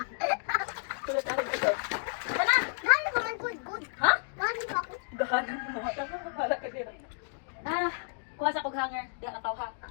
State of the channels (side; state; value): right; silent; digital silence